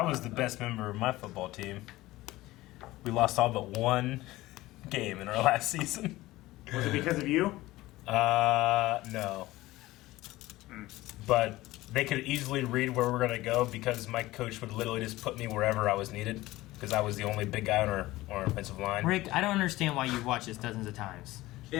was the best member of my football team. We lost all but one game in our last season. Was it because of you? No. But they could easily read where we're gonna go because my coach would literally just put me wherever I was needed because I was the only big guy on our offensive line. Rick, I don't understand why you've watched this dozens of times.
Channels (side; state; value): right; quieter; 17.9 dB